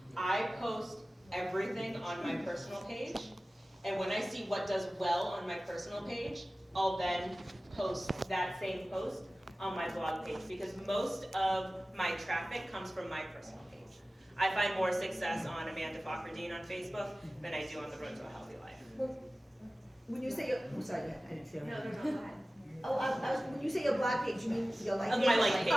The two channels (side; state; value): both; normal; correlation 0.96